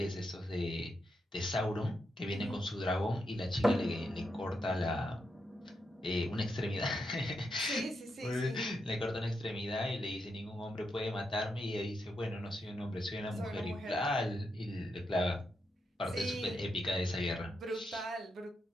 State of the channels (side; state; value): both; normal; correlation 0.83